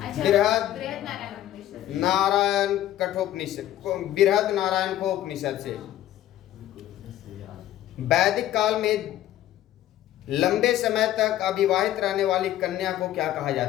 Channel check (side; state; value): right; quieter; 13.0 dB